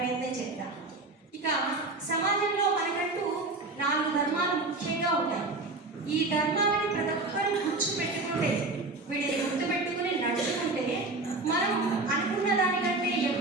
చేద్దాం. ఇక సమాజంలో మనకంటూ 4 ధర్మాలు ముఖ్యంగా ఉంటాయి. ఈ ధర్మాలని ప్రతి ఒక్కరూ గుర్తుపెట్టుకుంటే, వీటిని గుర్తుపెట్టుకుని నడుచుకుంటే మనం అనుకున్న దానికంటే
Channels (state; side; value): quieter; left; 3.1 dB